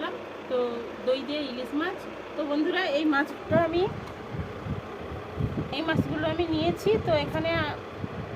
তো দই দিয়ে ইলিশ মাছ। তো বন্ধুরা, এই মাছগুলো আমি নিয়েছি। তো এখানে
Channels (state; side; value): identical; both; correlation 1.00